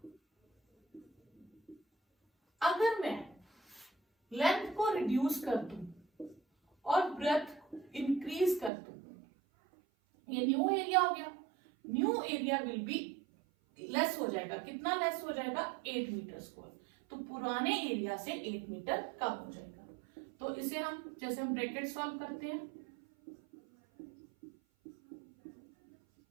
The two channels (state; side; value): drops out; left; at 8.7 s